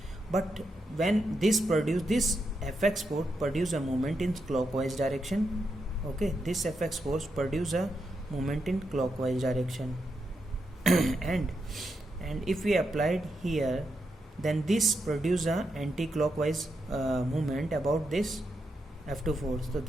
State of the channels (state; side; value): normal; both; correlation 0.84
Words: But when this Fx force produce a moment in clockwise direction. Okay, this Fx force produce a moment in clockwise direction and if we applied here, then this produce a anti-clockwise movement about this F2 force. So